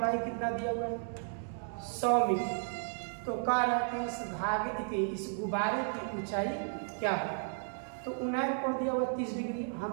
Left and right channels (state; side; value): silent; left; digital silence